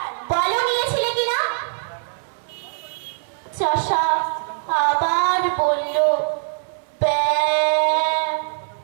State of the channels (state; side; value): silent; left; 59 dB below the other